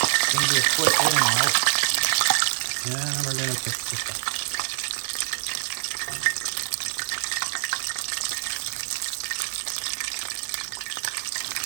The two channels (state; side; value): silent; left; digital silence